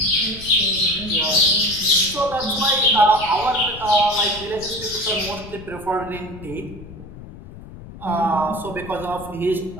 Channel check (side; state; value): left; noise; rumble, 15 dB below the sound